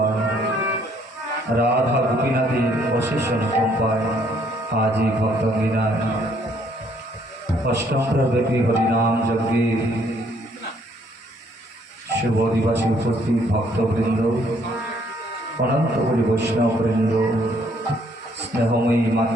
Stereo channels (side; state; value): both; normal; correlation 0.65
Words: রাধা গোপীনাথের অশেষ অনুকম্পায় আজই ভক্তঙ্গিনায় অষ্টম ব্যাপী হরিনাম যজ্ঞে শুভ দিবসে উপস্থিত ভক্তবৃন্দ, অনন্তপুরী বৈষ্ণববৃন্দ, স্নেহময়ী